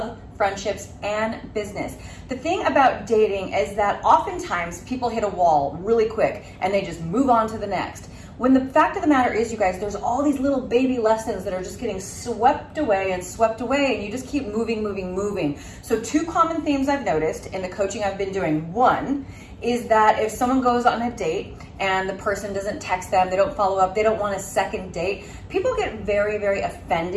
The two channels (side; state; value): both; identical; correlation 1.00